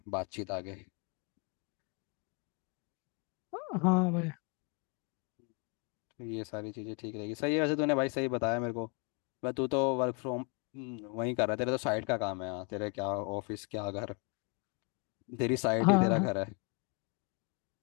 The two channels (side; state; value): right; quieter; 33.9 dB